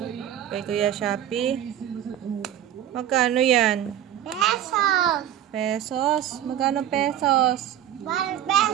Kay Kuya Shopee? Magkano yan? Pesos. Pesos? Magkano pesos? 1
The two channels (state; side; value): quieter; left; 10.9 dB